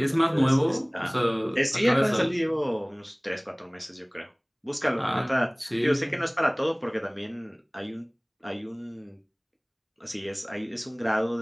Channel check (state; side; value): identical; both; correlation 1.00